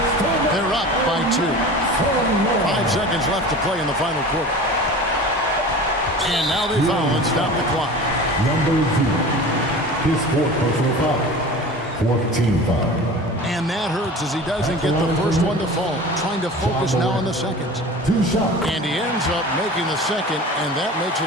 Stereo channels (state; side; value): normal; both; correlation 0.37